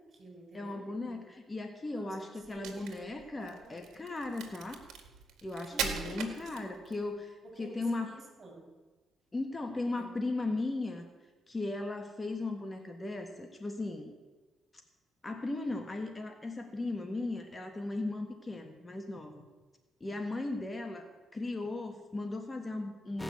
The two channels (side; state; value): both; normal; correlation 0.87